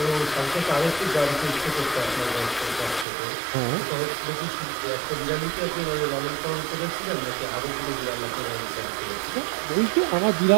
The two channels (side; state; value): left; drops out; at 3.1 s